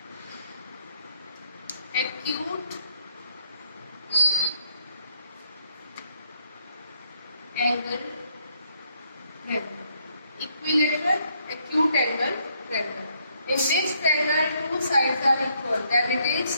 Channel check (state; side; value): inverted; both; correlation -0.71